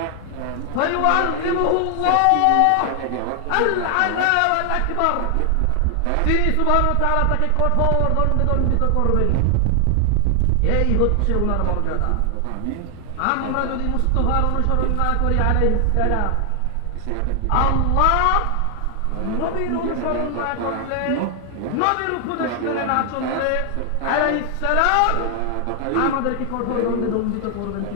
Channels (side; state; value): both; different; correlation 0.00